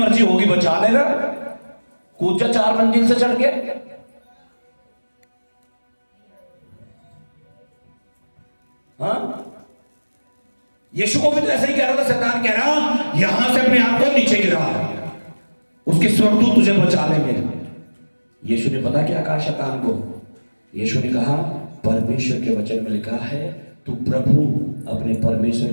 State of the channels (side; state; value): both; inverted; correlation -1.00